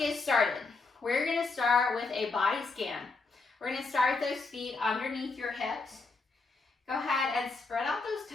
started. We're going to start with a body scan. We're going to start with those feet underneath your hips. Go ahead and spread out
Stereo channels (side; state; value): right; quieter; 3.9 dB